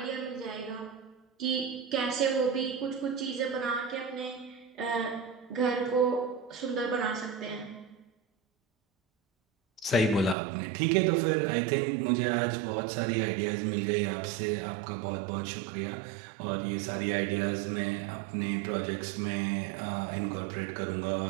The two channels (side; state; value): left; drops out; at 10.4 s